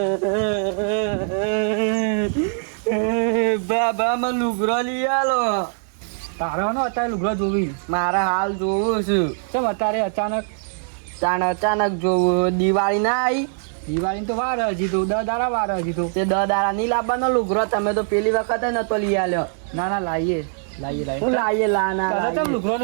બાબા માં લુગડો લઈ આલો. તારે નો અત્યારે લુગડો જોવી મારે હાલ જોવું છું. કેમ અત્યારે અચાનક જોવું. દિવાળી ના આવી દિવાળી તો વાર હજી તો 10 દાડા વાર હજી તો. તે 10 દાડા નહીં લાવવાનો લુગડો. તમે તો પેલી વખત નતો લઈ આલ્યો. ના લાવીએ હું લાવીએ તમે લુગડો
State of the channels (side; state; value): left; silent; digital silence